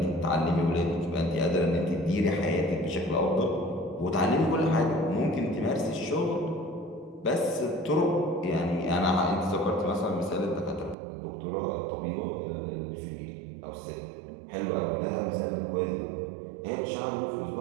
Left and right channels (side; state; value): left; drops out; at 11.0 s